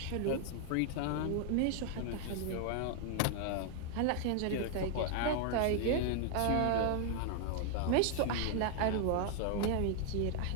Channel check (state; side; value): different; both; correlation 0.00